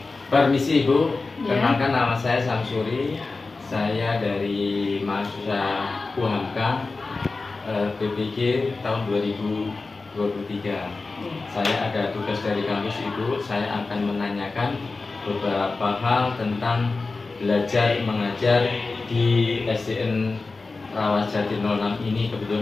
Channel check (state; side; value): quieter; right; 3.8 dB